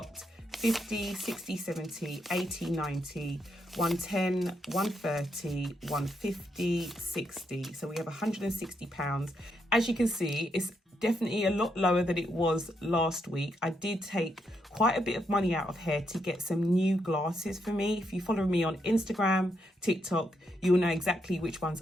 50, 60, 70, 80, 90, 110, 130, 150, 60. So we have £160. As you can see, it's definitely a lot lower than it was last week. I did take quite a bit of money out of here to get some new glasses for me. If you follow me on Instagram, TikTok, you'll know exactly which ones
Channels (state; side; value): normal; both; correlation 0.79